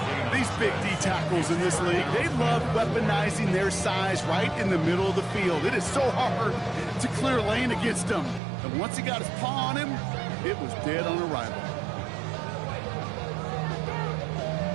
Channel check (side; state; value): left; drops out; at 8.4 s